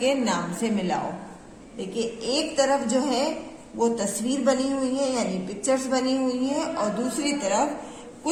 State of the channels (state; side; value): identical; both; correlation 1.00